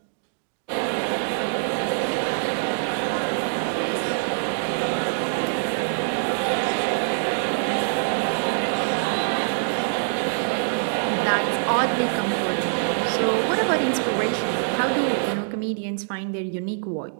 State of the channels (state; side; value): silent; left; digital silence